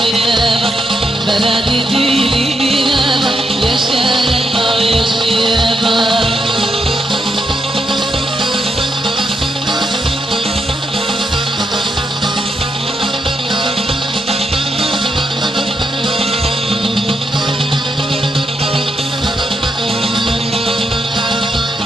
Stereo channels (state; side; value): normal; both; correlation 0.82